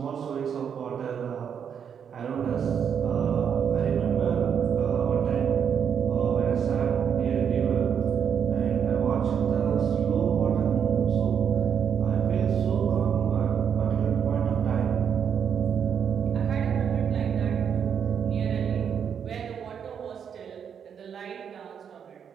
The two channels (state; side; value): quieter; left; 7.7 dB